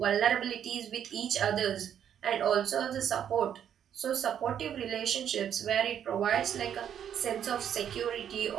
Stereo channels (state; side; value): quieter; left; 9.2 dB